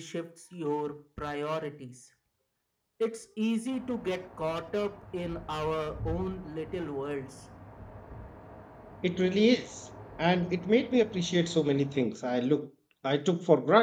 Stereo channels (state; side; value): identical; both; correlation 1.00